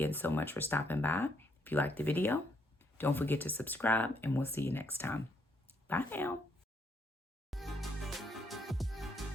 so much for stopping by. If you liked the video, don't forget to subscribe, and we'll see you next time. Bye now.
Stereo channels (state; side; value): normal; both; correlation 0.74